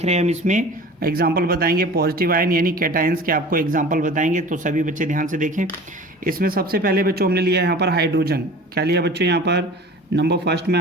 रहे हैं हम इसमें एग्जाम्पल बताएंगे पॉजिटिव आयन यानी कैटायंस के, आपको एग्जाम्पल बताएंगे। तो सभी बच्चे ध्यान से देखें। इसमें सबसे पहले बच्चों हमने लिया यहाँ पर हाइड्रोजन। क्या लिया बच्चों? यहाँ पर नंबर फर्स्ट में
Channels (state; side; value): normal; both; correlation 0.41